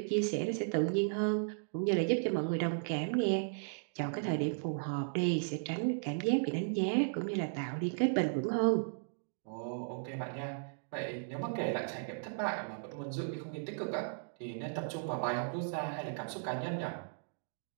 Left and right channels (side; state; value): left; silent; digital silence